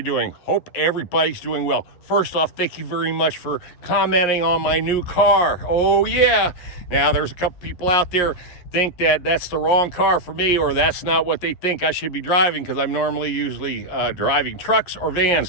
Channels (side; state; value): right; late; 11 ms